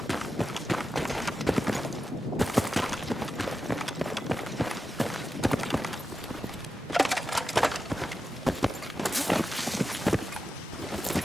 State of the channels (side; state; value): both; normal; correlation 0.90